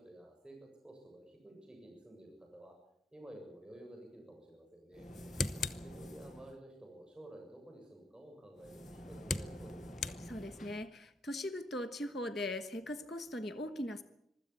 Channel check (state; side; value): normal; both; correlation 0.75